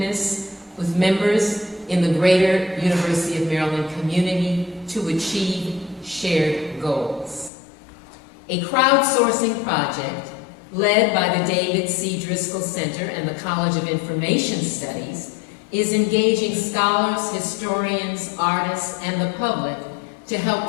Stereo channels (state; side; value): drops out; right; at 7.5 s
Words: with members in the greater University of Maryland community to achieve shared goals. A crowdsourcing project led by the David C. Driscoll Center and the College of Information Studies is engaging scholars, historians, artists, and the public to